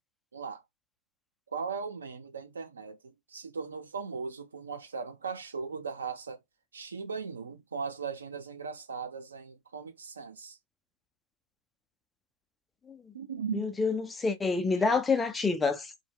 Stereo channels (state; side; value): normal; both; correlation 0.40